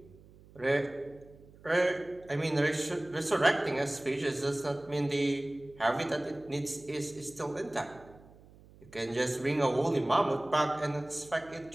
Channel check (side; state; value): right; noise; hum, 23 dB below the sound